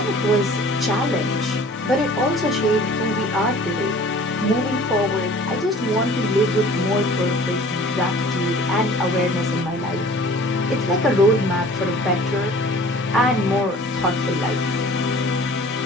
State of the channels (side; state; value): both; normal; correlation 0.48